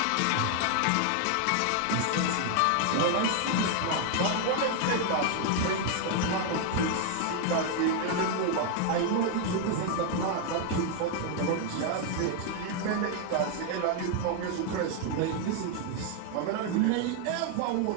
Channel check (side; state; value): both; different; correlation 0.00